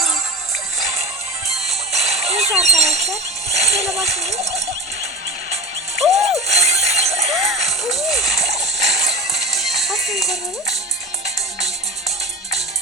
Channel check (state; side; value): normal; both; correlation 0.31